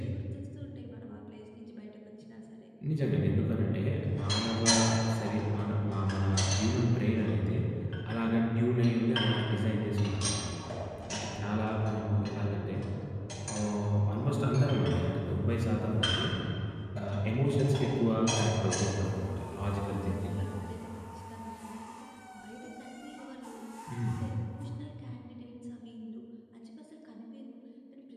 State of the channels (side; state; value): both; identical; correlation 1.00